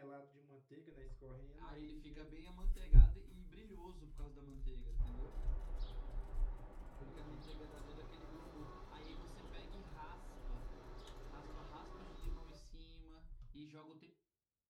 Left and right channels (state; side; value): identical; both; correlation 1.00